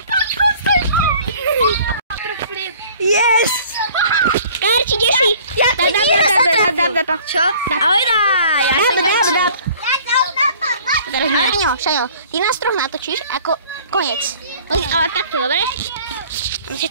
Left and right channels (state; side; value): inverted; both; correlation -0.51